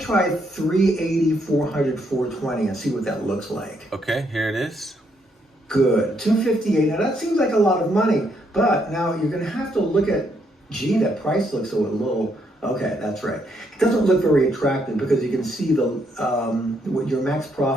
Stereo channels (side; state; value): both; normal; correlation 0.74